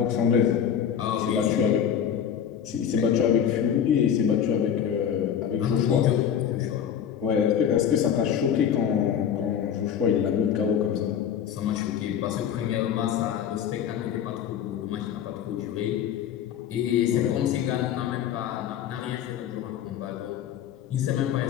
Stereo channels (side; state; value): right; quieter; 8.8 dB